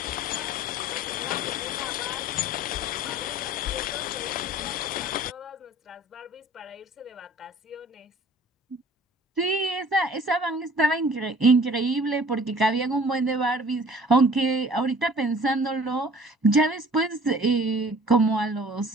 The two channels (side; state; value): both; normal; correlation 0.49